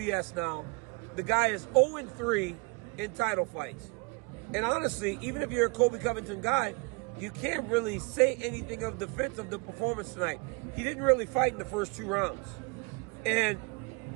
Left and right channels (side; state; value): left; quieter; 30.7 dB